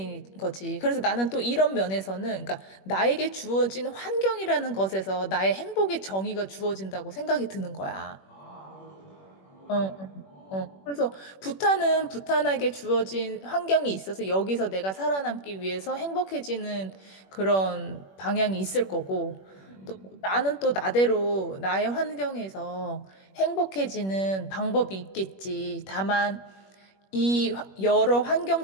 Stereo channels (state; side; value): late; right; 21 ms